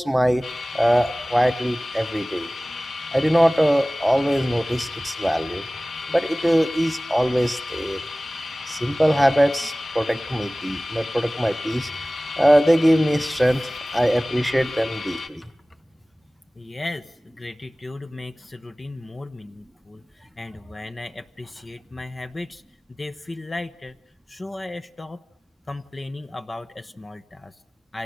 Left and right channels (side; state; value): both; normal; correlation 0.98